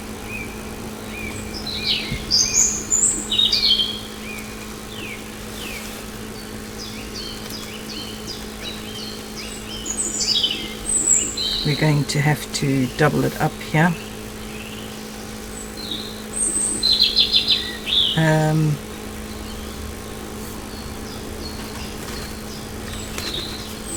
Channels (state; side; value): identical; both; correlation 1.00